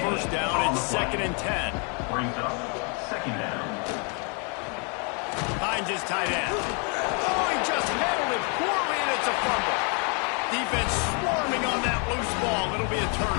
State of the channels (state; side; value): quieter; right; 36.7 dB